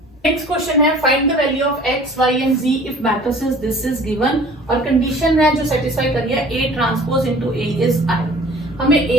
नेक्स्ट क्वेश्चन है find the value of X Y and Z if matrices this is given, और कंडीशन है जो सेटिस्फाई कर लिया, A transpose into A is I. हमें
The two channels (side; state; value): both; normal; correlation 0.48